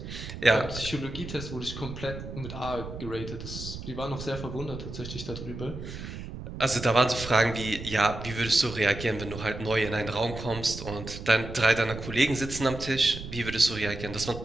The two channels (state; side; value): noise; right; rumble, 10 dB below the sound